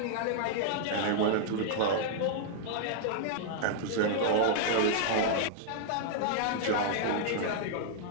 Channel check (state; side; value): different; both; correlation -0.01